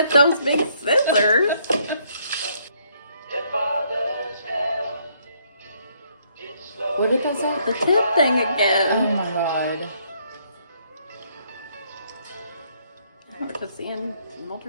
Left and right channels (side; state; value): both; inverted; correlation -0.69